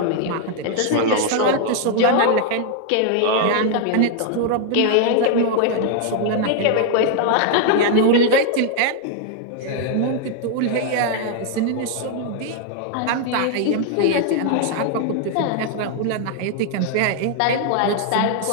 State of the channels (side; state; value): both; different; correlation 0.00